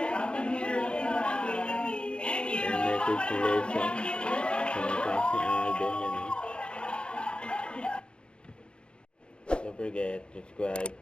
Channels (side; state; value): right; late; 0.054 ms